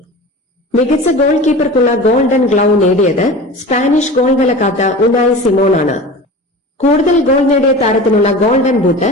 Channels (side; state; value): both; normal; correlation 0.35